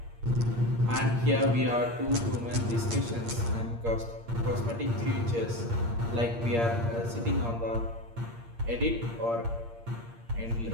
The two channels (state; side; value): late; left; 8.6 ms